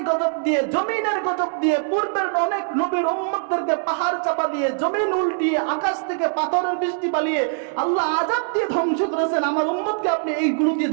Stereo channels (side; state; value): left; silent; 62 dB below the other